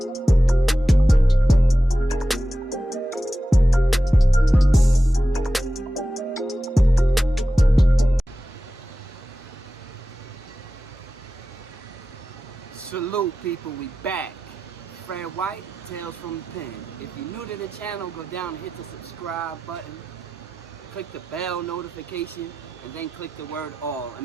Salute people, we back. Fred White, Tales from the Pen. If you're new to the channel, go down and hit the subscribe button. Click the bell notification and then click the word all.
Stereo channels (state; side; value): normal; both; correlation 0.93